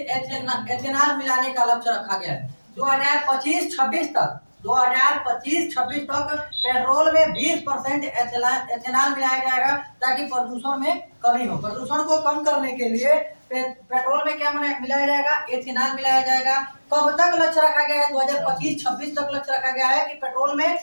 मिलाने का लक्ष्य रखा गया है। 2025-26 तक, 2025-26 तक पेट्रोल में 20% एथेनॉल मिलाया जाएगा, ताकि प्रदूषण में कमी हो। प्रदूषण को कम करने के लिए पेट्रोल में क्या मिलाया जाएगा? एथेनॉल मिलाया जाएगा। कब तक लक्ष्य रखा गया है? 2025-26 तक लक्ष्य रखा गया है कि पेट्रोल में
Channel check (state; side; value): inverted; both; correlation -1.00